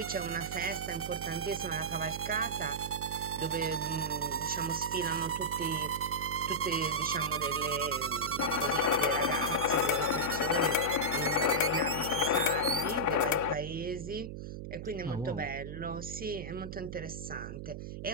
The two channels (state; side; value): noise; right; hum, 8 dB below the sound